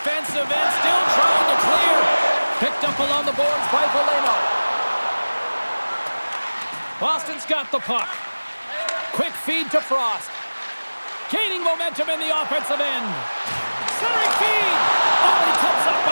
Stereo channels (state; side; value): inverted; both; correlation -1.00